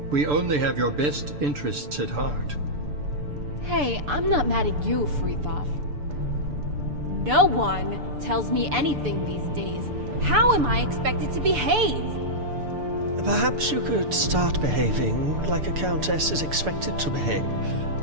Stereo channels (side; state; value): left; late; 6.8 ms